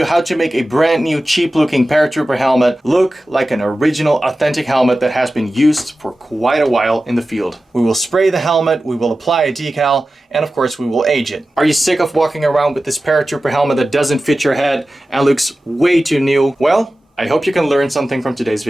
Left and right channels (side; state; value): both; normal; correlation 0.95